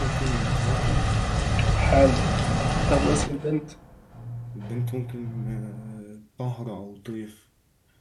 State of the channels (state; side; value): identical; both; correlation 1.00